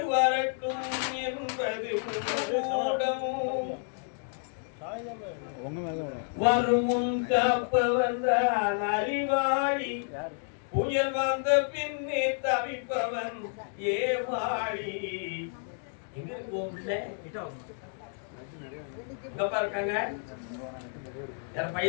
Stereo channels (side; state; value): right; silent; 58 dB below the other